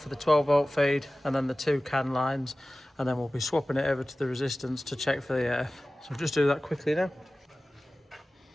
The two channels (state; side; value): normal; both; correlation 0.97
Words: the 12 volt feed and then the 2 CAN lines, and then we'll be swapping it over to the resistance to check for the earth. So I'll just do that quickly now.